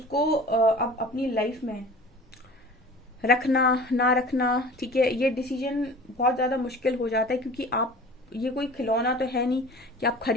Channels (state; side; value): normal; both; correlation 0.42